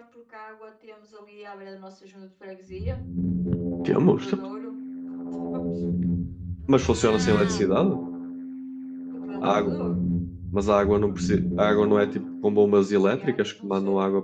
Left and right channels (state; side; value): identical; both; correlation 1.00